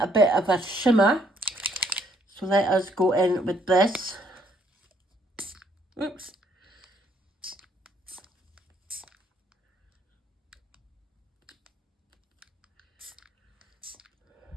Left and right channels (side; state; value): both; normal; correlation 0.68